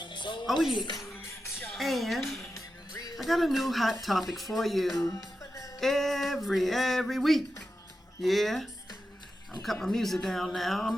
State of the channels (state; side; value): normal; both; correlation 0.90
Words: Oh yeah. And I got a new hot topic for you every week. Yeah. I'm cutting my music down